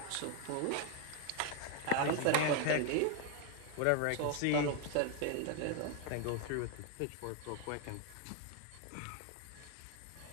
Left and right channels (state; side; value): different; both; correlation 0.00